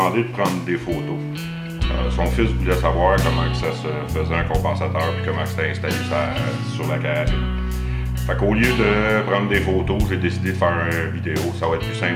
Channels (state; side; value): identical; both; correlation 1.00